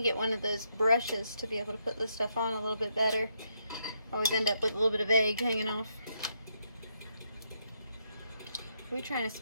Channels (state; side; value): inverted; both; correlation -0.78